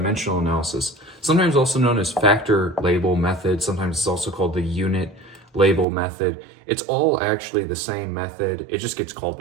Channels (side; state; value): left; drops out; at 5.9 s